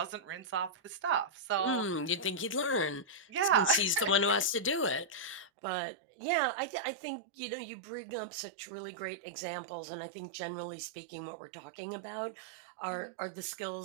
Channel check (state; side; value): drops out; left; at 5.5 s